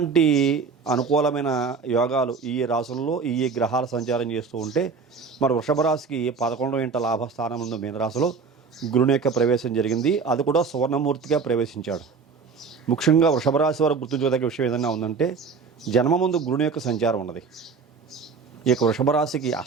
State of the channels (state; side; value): quieter; left; 5.2 dB